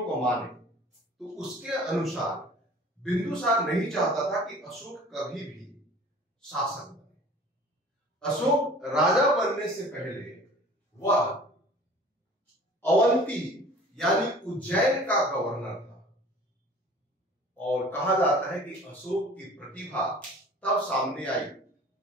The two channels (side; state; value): both; normal; correlation 0.46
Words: को माने तो उसके अनुसार बिंदुसार नहीं चाहता था कि अशोक कभी भी शासक बने। अशोक राजा बनने से पहले वह अवंती यानी उज्जैन का गवर्नर था और कहा जाता है कि अशोक की प्रतिभा तब सामने आई